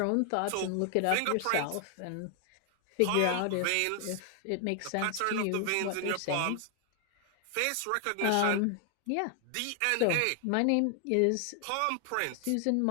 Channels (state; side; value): different; both; correlation 0.00